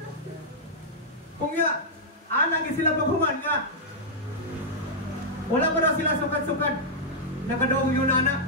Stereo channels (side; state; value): both; normal; correlation -0.07